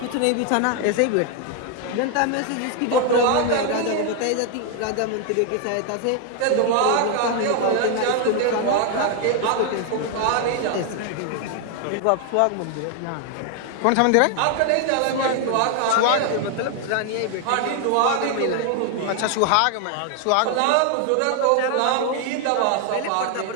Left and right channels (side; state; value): both; different; correlation 0.00